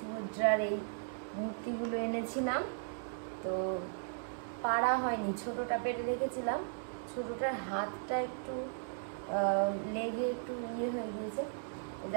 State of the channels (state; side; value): silent; left; digital silence